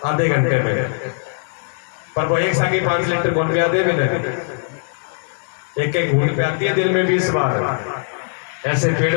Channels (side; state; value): right; silent; 66 dB below the other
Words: आधे घंटे में, पर वो एक साथ 5 लीटर कौन पिया दे? एक एक घूट पियाती है दिन में 20 बार। ऐसे